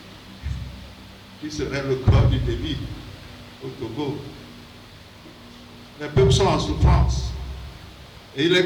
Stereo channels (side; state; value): both; identical; correlation 1.00